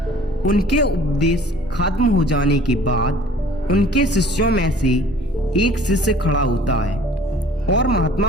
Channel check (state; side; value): normal; both; correlation 0.51